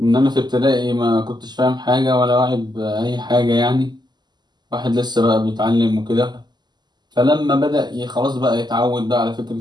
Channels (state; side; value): late; left; 0.21 ms